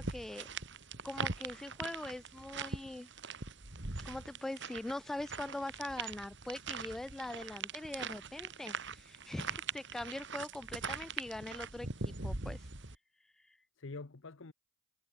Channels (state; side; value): normal; both; correlation 0.61